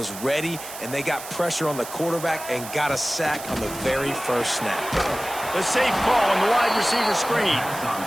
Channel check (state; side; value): noise; right; hiss, 12 dB below the sound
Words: ready, and they got pressure on the quarterback and got a sack on the very first snap. The safe call on the wide receiver screen.